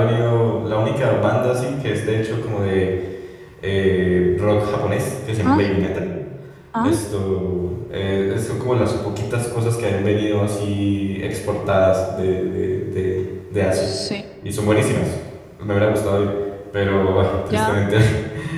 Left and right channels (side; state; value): both; identical; correlation 1.00